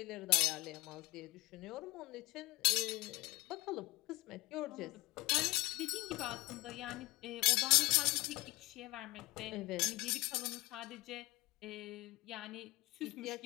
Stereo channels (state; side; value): quieter; right; 21.4 dB